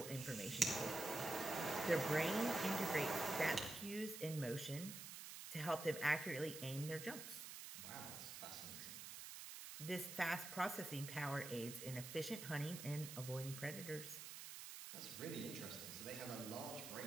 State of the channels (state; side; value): noise; right; hiss, 9 dB below the sound